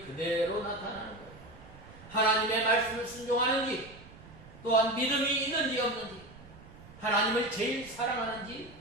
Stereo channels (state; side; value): noise; right; rumble, 20 dB below the sound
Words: 그대로 나타나는 거예요. 하나님의 말씀을 순종하는지, 또한 믿음이 있는지 없는지, 하나님을 제일 사랑하는지,